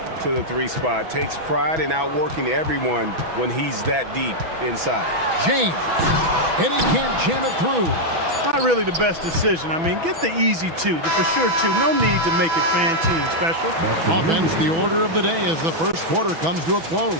to the 3 spot. Takes pride in outworking everyone when he's that deep inside. James, and he can't jam it through. Not really the best decision. I mean, get the easy 2, the for sure 2. No need to make it fancy and special. Offense, the order of the day as the first quarter comes to a close.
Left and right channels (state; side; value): late; left; 6.1 ms